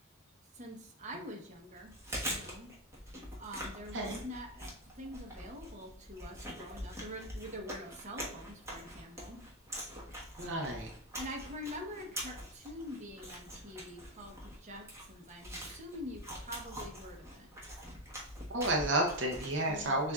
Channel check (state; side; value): normal; both; correlation 0.05